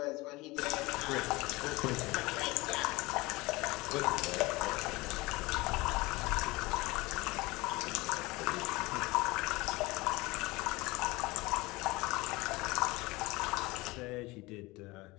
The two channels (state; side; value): quieter; right; 22.1 dB